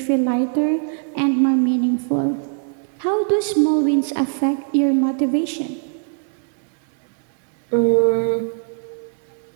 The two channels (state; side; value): silent; left; digital silence